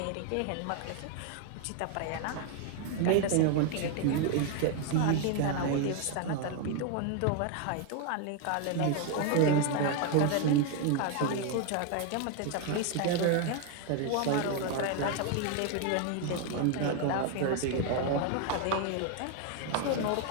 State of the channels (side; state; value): both; different; correlation 0.01